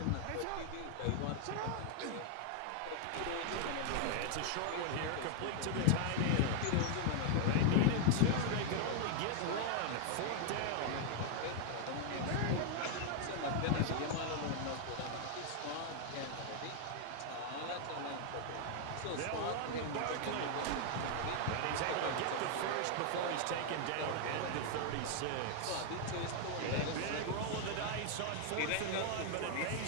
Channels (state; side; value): different; both; correlation 0.00